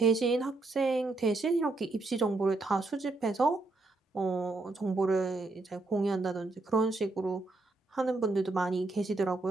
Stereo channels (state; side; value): quieter; left; 3.2 dB